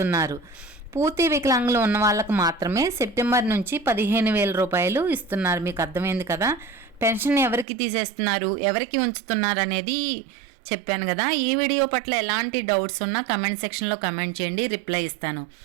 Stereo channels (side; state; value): left; drops out; at 7.7 s